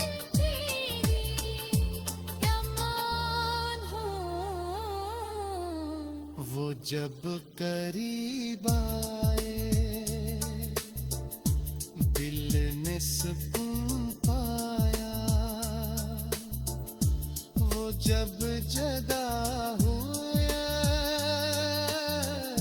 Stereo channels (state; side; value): identical; both; correlation 1.00